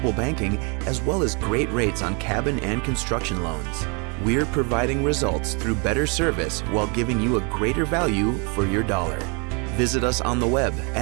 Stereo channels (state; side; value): quieter; left; 33.8 dB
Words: banking, as well as great rates on cabin and construction loans. We're providing results through better service while giving you a greater value for your dollar. Visit us on the web